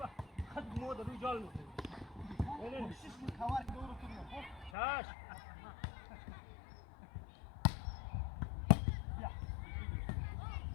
Hadi moda rücal mı? Öyle mi? Kavar doğru tutuyor. Çaş.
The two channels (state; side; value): drops out; right; at 4.7 s